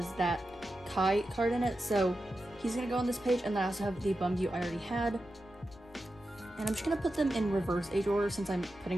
that Kai card in it. So he's going to go on this page. And then I also have the Bumgyu I already had. And I'm just going to put them in reverse age order since I'm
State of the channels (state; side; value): noise; left; rumble, 23 dB below the sound